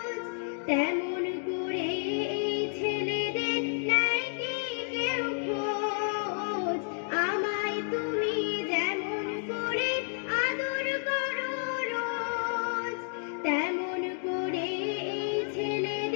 তেমন করে এই ছেলেদের নেয় কি কেউ খোঁজ? আমায় তুমি যেমন করে আদর করো রোজ, তেমন করে এই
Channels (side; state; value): right; silent; 57 dB below the other